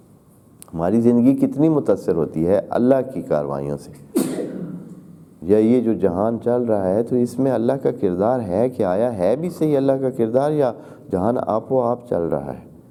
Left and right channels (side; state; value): both; identical; correlation 1.00